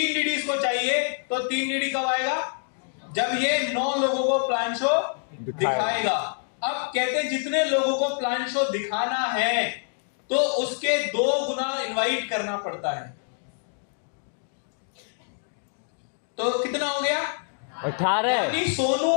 डीडी इसको चाहिए तो 3 डीडी कब आएगा? जब ये 9 लोगों को प्लान शो दिखाएगा। अब कहते हैं जितने लोगों को प्लान शो दिखाना है तो उसके 2 गुना इनवाइट करना पड़ता है। तो कितना हो गया? 18। यानी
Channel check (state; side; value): silent; right; 61 dB below the other